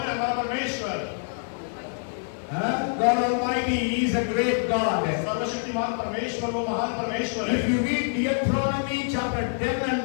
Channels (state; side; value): silent; right; digital silence